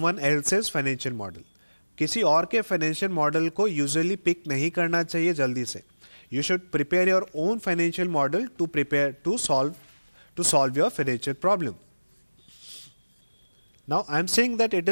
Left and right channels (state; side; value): inverted; both; correlation -1.00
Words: else's financial model. किसी और के फाइनेंशियल मॉडल को यूजुअली पिक नहीं करना चाहिए जल्दी से। You should prepare your own financial model to solve your financial problem. Now I am saying that it